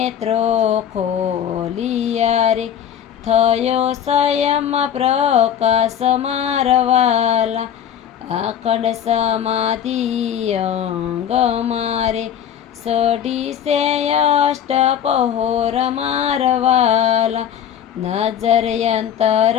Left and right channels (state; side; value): quieter; right; 9.3 dB